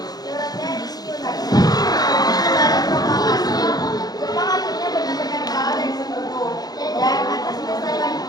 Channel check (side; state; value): right; late; 0.19 ms